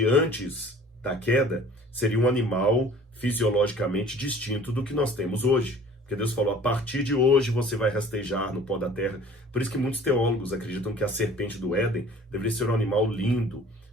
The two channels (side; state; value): both; normal; correlation 0.49